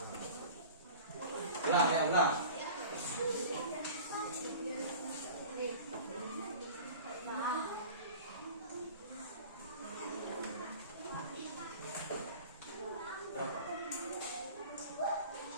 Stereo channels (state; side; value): inverted; both; correlation -0.40